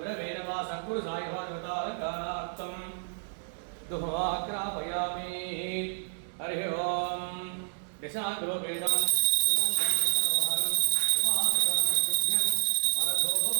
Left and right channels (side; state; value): left; silent; 58 dB below the other